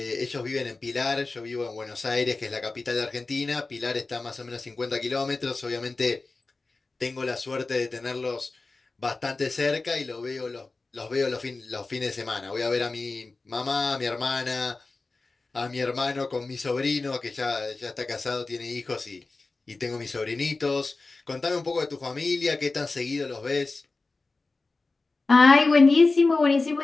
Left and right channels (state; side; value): quieter; right; 3.6 dB